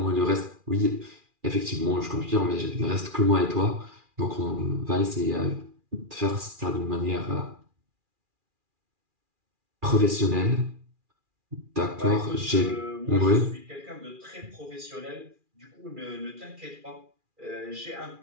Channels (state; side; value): late; left; 2.4 ms